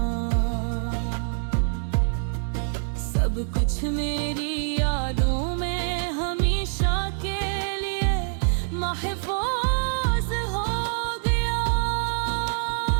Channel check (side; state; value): left; silent; 57 dB below the other